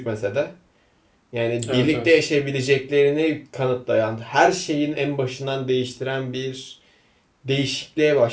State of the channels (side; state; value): both; identical; correlation 1.00